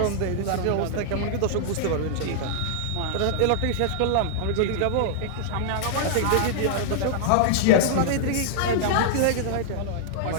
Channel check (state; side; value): different; both; correlation -0.01